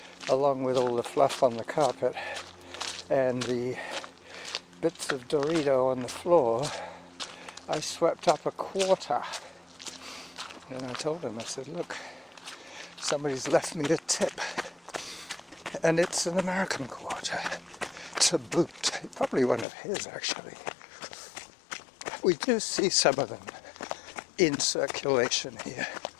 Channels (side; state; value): right; drops out; at 19.7 s